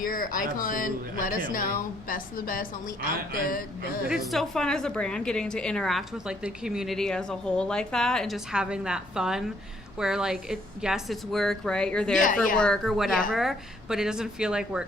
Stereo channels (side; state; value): both; normal; correlation 0.67